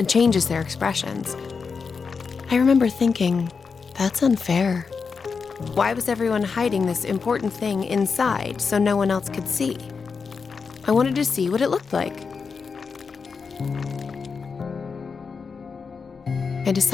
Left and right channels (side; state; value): right; quieter; 5.3 dB